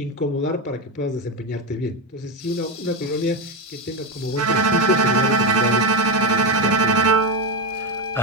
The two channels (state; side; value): normal; both; correlation 0.11